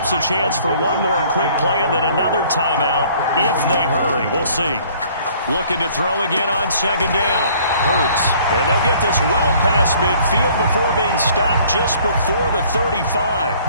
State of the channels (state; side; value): inverted; both; correlation -0.56